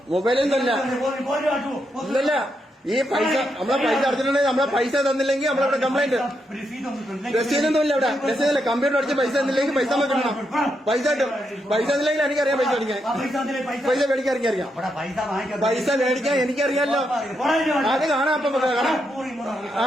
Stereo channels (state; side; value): normal; both; correlation 0.82